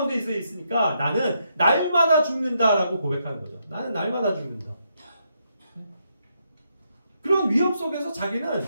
있으니까 나는 날마다 죽는다라고 고백하는 거죠. 나는 날마다 죽는다. 그런 위험 속에서 자기는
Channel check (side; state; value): both; inverted; correlation -0.79